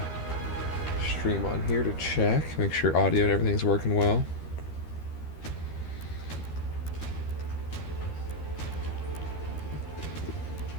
stream on here to check, make sure audio and everything's working well.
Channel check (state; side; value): late; right; 13 ms